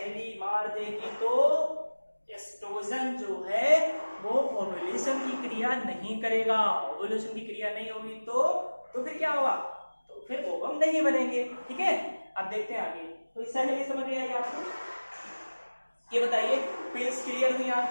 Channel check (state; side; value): inverted; both; correlation -1.00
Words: मार देगी तो एस्ट्रोजन जो है वो ओव्यूलेशन की क्रिया नहीं करेगा। ओव्यूलेशन की क्रिया नहीं होगी तो फिर क्या होगा, तो फिर ओवम नहीं बनेंगे, ठीक है। अब देखते हैं आगे। तो इस सहेली समझ में आएगी आपको, ये बताइए, पिल्स क्लियर हुई